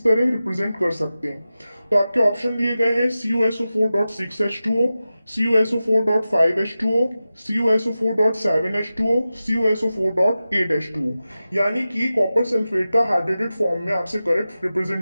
तरह रिप्रेजेंट कर सकते हैं। तो आपके ऑप्शन दिए गए हैं CuSO4.6H2O, CuSO4.5H2O, CuSO4.7H2O, CuSO4.8H2O। यानी कि कॉपर सल्फेट का हाइड्रेटेड फॉर्म में आपसे करेक्ट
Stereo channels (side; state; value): both; inverted; correlation -0.94